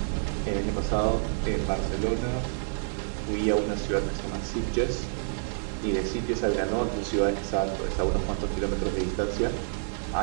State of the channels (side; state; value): left; silent; digital silence